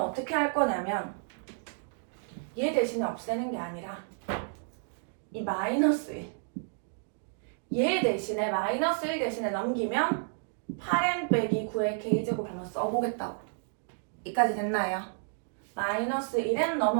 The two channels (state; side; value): silent; left; digital silence